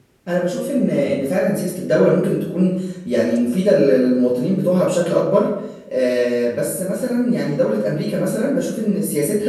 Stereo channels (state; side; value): identical; both; correlation 1.00